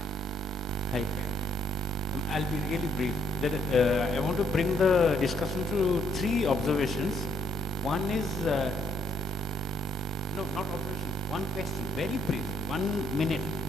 Hi. I'll be really brief. I want to bring the discussion to three observations. One is, no, not observation, one question, very brief, 1 minute,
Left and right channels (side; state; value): both; normal; correlation 0.70